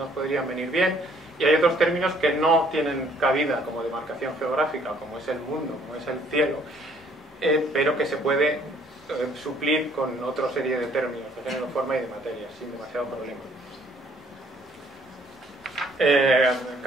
podrían venir bien. Y hay otros términos que no tienen cabida como demarcación geográfica, como es el mundo, como es el cielo, pero que se puede suplir con otra serie de términos de género, forma y de materia, sin demasiado problema.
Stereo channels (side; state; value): both; normal; correlation 0.62